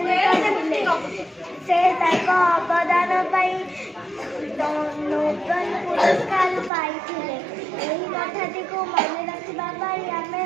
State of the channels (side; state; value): left; drops out; at 6.7 s